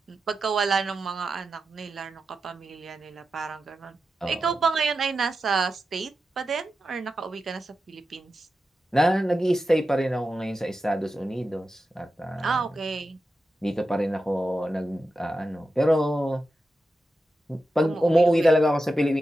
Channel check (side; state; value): both; normal; correlation 0.91